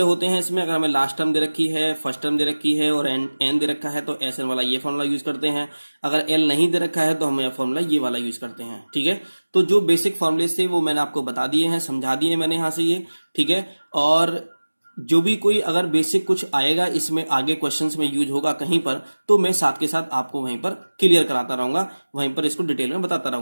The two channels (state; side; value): inverted; both; correlation -1.00